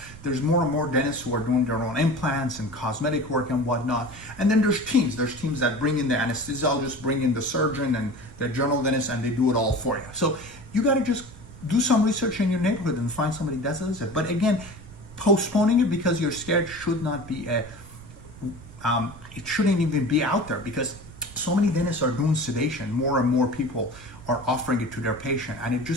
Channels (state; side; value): noise; right; rumble, 18 dB below the sound